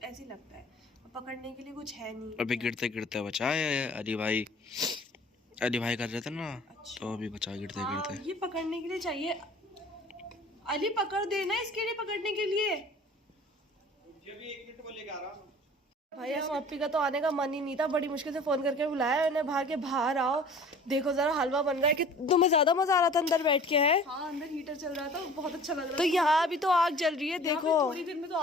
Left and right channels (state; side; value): normal; both; correlation 0.46